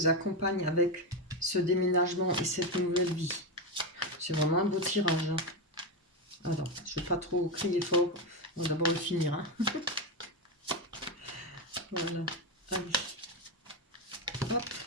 accompagne avec ce déménagement et cette nouvelle vie. C'est vraiment un beau tirage. Hein. Alors, je ne vais pas trop crier fort. On va d'abord le finir. Hein. Voilà. Allez. Hop.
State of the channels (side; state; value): both; normal; correlation 0.11